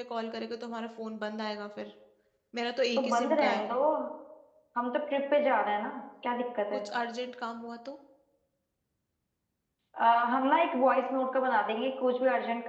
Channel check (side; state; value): both; identical; correlation 1.00